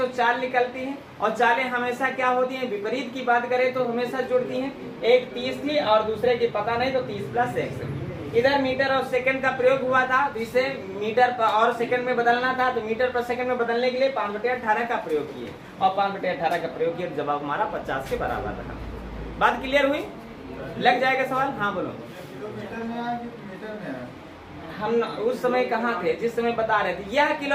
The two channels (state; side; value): identical; both; correlation 1.00